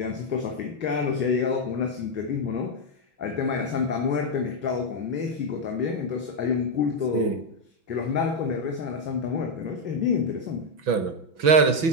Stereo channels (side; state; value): left; late; 6.1 ms